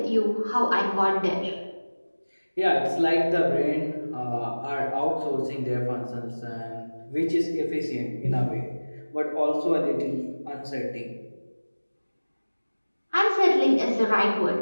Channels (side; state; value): both; inverted; correlation -1.00